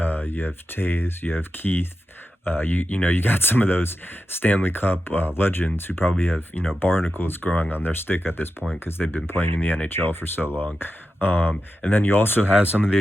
have Tays, you have Keith. You got some of those Stanley Cup legends who probably have barnacles growing on their stick at this point because they've been playing in the NHL for so long. And then you also have some of the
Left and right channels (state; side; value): normal; both; correlation 0.89